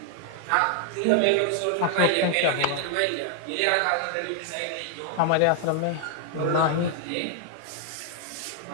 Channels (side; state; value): both; different; correlation 0.00